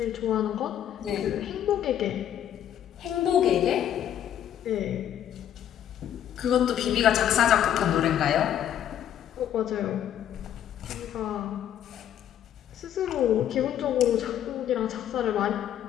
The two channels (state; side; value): quieter; right; 10.4 dB